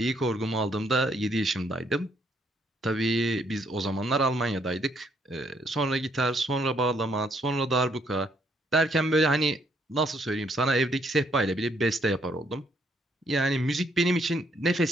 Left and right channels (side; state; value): both; normal; correlation 0.70